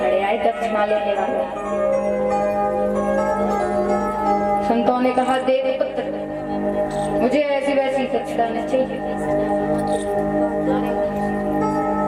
आए दक्षिणा लेने वाले। संतों ने कहा देव पुत्र, मुझे ऐसी वैसी दक्षिणा नहीं चाहिए।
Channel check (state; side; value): identical; both; correlation 1.00